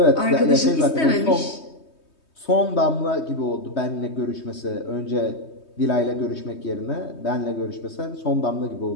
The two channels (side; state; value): right; late; 3.2 ms